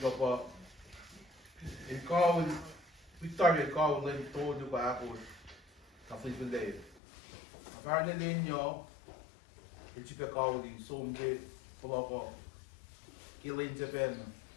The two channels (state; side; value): drops out; right; at 7.0 s